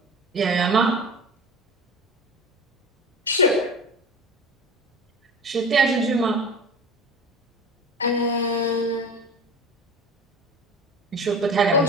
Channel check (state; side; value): normal; both; correlation 0.34